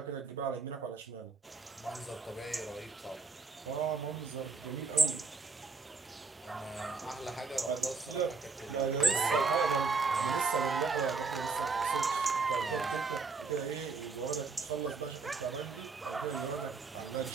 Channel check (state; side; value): quieter; left; 4.4 dB